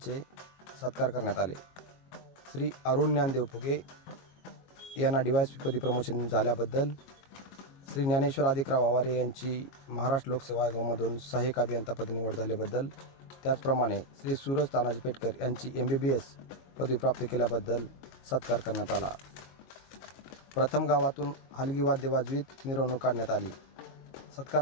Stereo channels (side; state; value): right; late; 22 ms